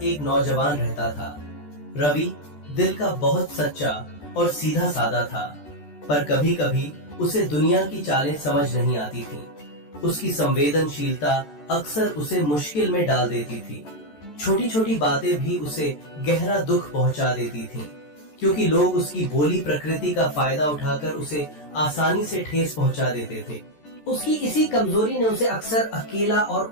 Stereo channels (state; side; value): late; right; 14 ms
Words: एक नौजवान रहता था। रवि दिल का बहुत सच्चा और सीधा साधा था, पर कभी कभी उसे दुनिया की चालें समझ नहीं आती थीं। उसकी संवेदनशीलता अक्सर उसे मुश्किल में डाल देती थी। छोटी छोटी बातें भी उसे गहरा दुख पहुंचा देती थीं, क्योंकि लोग उसकी भोली प्रकृति का फायदा उठाकर उसे आसानी से ठेस पहुंचा देते थे। उसकी इसी कमजोरी ने उसे अक्सर अकेला और